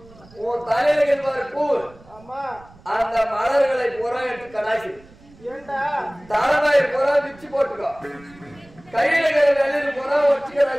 உன் தலையில கேட்பாரு பூ, ஆமா அந்த மலர்களை புறா எடுத்து கடாசி, ஏண்டா தலைமையை புறா விச்சு போட்டுக்கோ, கையில வெள்ளையில புறா ஒட்டி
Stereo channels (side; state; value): right; noise; rumble, 24 dB below the sound